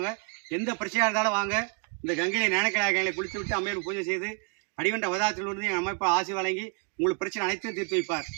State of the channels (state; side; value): quieter; left; 34.4 dB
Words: எந்த பிரச்சனையாக இருந்தாலும் வாங்க. இந்த கங்கையை ஞானக்கலாயங்களை குளித்து விட்டு அம்மையார் பூஜை செய்து அடிவண்ட அவதாரத்தில் இருந்து என் அமைப்பு ஆசி வழங்கி உங்களுக்கு பிரச்சனை அனைத்தும் தீர்த்து வைப்பார்.